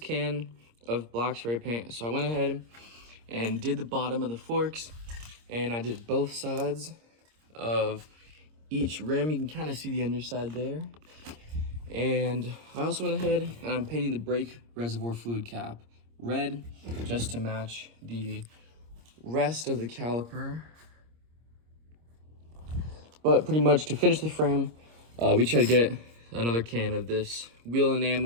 of black spray paint, so I went ahead and did the bottom of the forks, and I did both sides of each rim. You can kind of see the underside there. And I also went ahead and I'm painting the brake reservoir fluid cap red just to match the rest of the caliper. But pretty much to finish the frame, we try to get another can of this wheel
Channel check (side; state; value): left; late; 26 ms